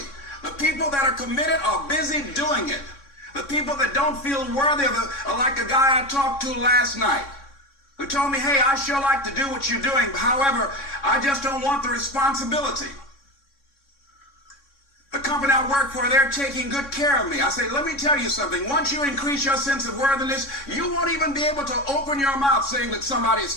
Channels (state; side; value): late; right; 3.6 ms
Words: The people that are committed are busy doing it. The people that don't feel worthy are like a guy I talked to last night who told me, hey, I sure like to do what you're doing. However, I just don't want the responsibility. The company I work for, they're taking good care of me. I say, let me tell you something. Once you increase your sense of worthiness, you won't even be able to open your mouth saying that somebody is